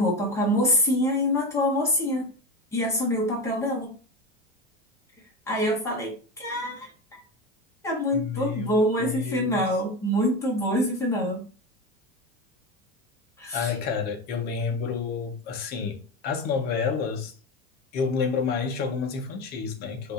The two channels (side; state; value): both; normal; correlation 0.21